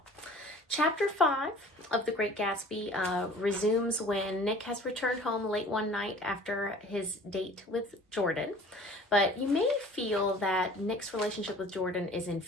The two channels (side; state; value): both; normal; correlation 0.47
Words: Chapter 5 of The Great Gatsby resumes when Nick has returned home late one night after his date with Jordan. But you may feel that Nick's relationship with Jordan is